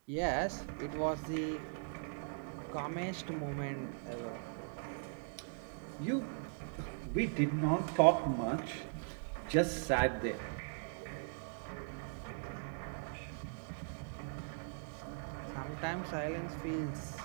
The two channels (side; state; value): left; silent; digital silence